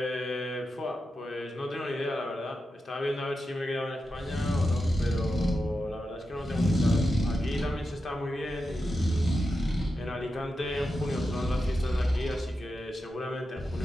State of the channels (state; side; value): normal; both; correlation 0.89